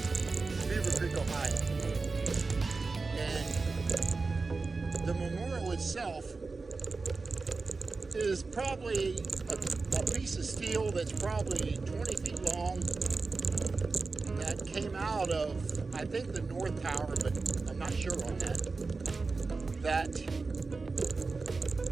Beaver Creek, Ohio. And the memorial itself is probably a piece of steel that's probably 20 feet long that came out of, I think, the North Tower, but I'm not sure on that. That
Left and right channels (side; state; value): left; quieter; 4.0 dB